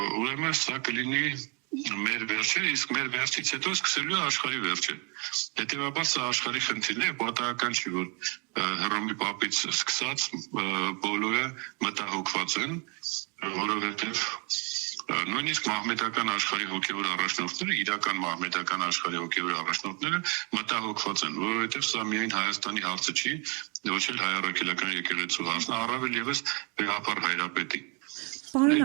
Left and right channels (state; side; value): quieter; left; 32.5 dB